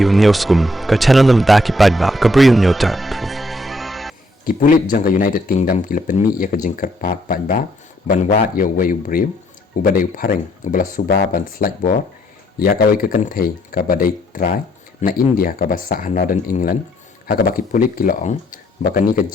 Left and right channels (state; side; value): normal; both; correlation 0.69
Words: newskum ka channel nam ta ki padba ka briu newtar. Ki pulit jang ka United Kingdom ki lepen mi ya ka jingkar pat padba ban wat ya wayu briu u badai pareng u bala suba ban slide board ya ka wai ka kanthei ka badai try na India ka basa Northern England ha ka baki pulit ki loong bakani ka